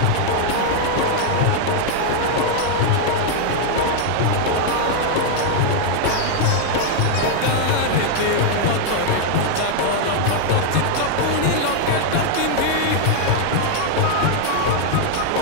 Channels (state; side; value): different; both; correlation 0.00